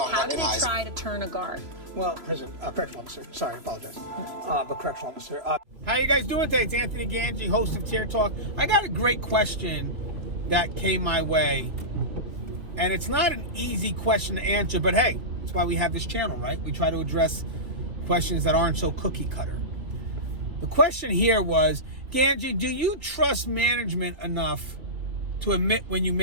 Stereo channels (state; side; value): late; left; 3.0 ms